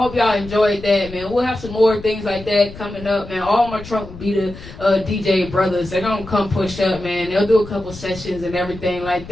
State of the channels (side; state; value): left; noise; rumble, 15 dB below the sound